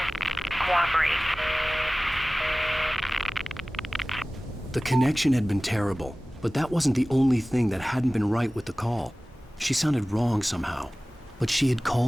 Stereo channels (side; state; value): both; normal; correlation 0.98